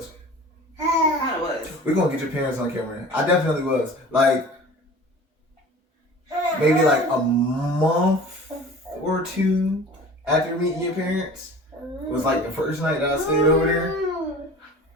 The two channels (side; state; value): both; normal; correlation 0.41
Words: He kind of was. We're going to get your parents on camera. I definitely was. Like, maybe like a month or two after meeting your parents was like the first night that I stayed over there.